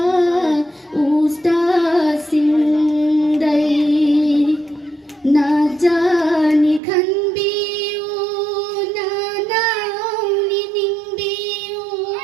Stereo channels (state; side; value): drops out; left; at 6.8 s